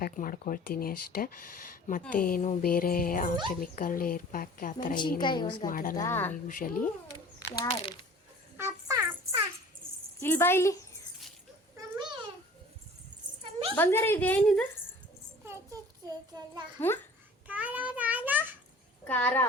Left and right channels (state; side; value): normal; both; correlation 0.46